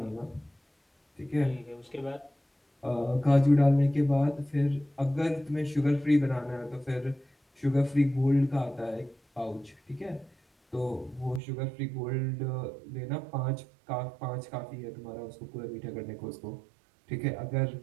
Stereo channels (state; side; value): drops out; left; at 11.4 s